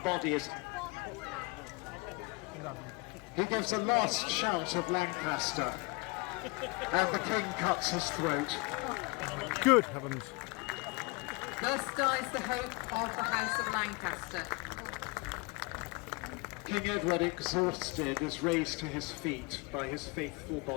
body is... He gives a last shout of Lancaster, and the king cuts his throat. Good heavens. Thus dies the hope of the House of Lancaster. King Edward, exhausted, is raised to his feet by his faithful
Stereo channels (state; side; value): quieter; right; 27.0 dB